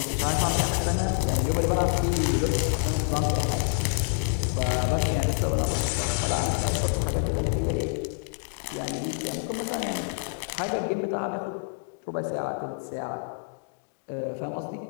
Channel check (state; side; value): silent; right; digital silence